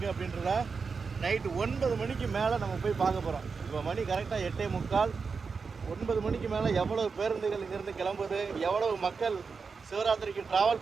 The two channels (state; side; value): quieter; left; 5.1 dB